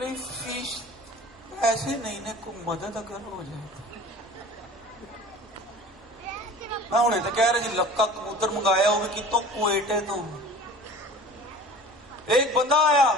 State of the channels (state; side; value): normal; both; correlation 0.41